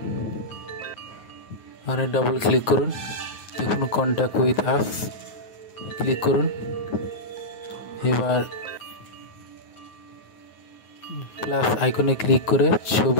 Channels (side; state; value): right; late; 9.4 ms